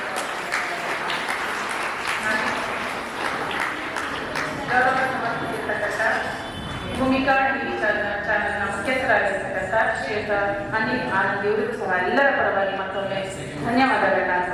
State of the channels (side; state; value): both; identical; correlation 1.00